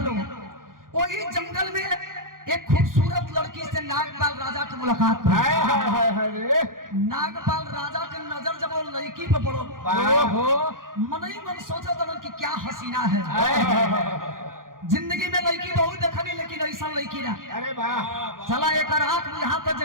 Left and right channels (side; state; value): left; late; 0.90 ms